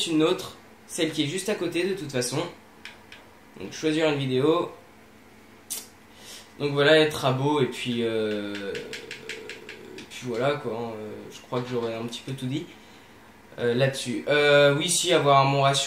une autre, celle qui est juste à côté de toute façon. Donc choisir une vidéo. Donc voilà, être à beau et puis voilà quoi. Je crois que j'aurais un petit peu tout dit là-dessus. Oui, si, avoir mon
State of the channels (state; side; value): identical; both; correlation 1.00